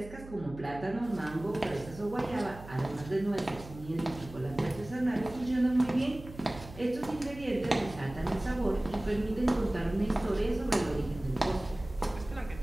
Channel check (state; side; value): noise; right; hum, 15 dB below the sound